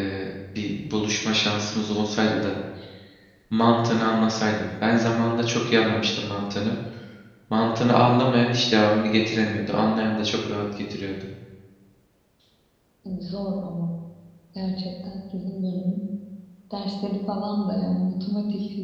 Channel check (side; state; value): both; identical; correlation 1.00